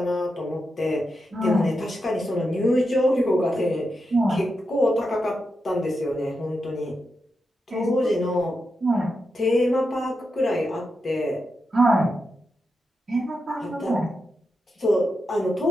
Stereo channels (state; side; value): normal; both; correlation 0.87